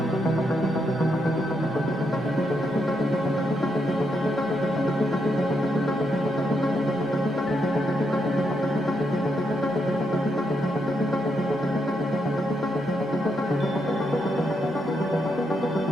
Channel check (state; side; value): normal; both; correlation 0.80